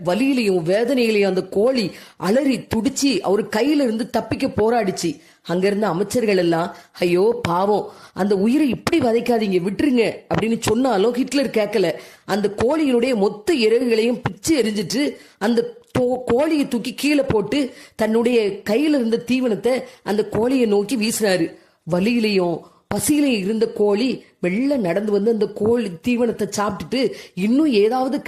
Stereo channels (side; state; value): both; identical; correlation 1.00